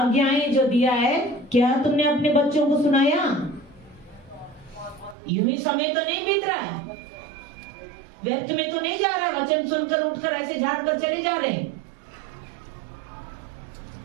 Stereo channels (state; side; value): drops out; left; at 5.2 s